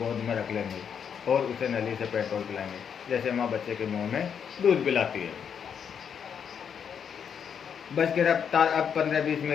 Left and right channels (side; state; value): right; quieter; 7.5 dB